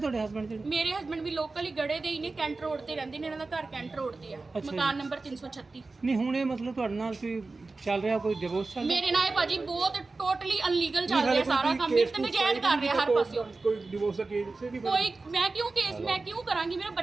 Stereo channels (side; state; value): left; quieter; 3.6 dB